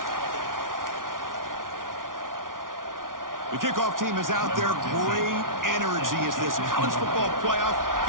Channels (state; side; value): late; left; 0.89 ms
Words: The kickoff team is out there. Great energy as this college football playoff